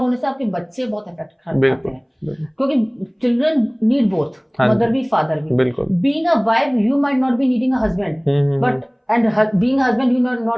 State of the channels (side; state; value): both; identical; correlation 1.00